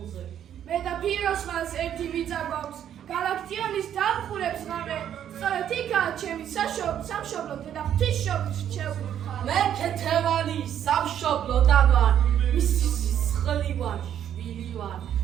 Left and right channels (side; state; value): left; quieter; 10.0 dB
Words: მე და ფიროსმანს ერთი მიწა გვაქვს. გალაქტიონის დამხურებს ღამე. სწორედ იქაა ჩემი სამშობლო და ღვთისმშობლის რჩეული მხარე. მე ქეთევანი სამშობლოდან ვარ. მისი სისხლი ვარ, შვილი ვარ